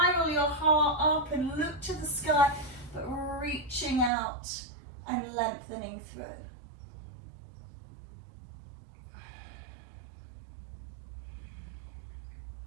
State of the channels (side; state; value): left; drops out; at 4.1 s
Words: your heart up and look to the sky, but reaching out and lengthening through.